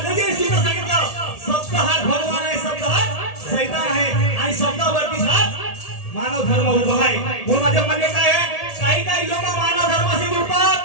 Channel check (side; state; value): right; late; 1.8 ms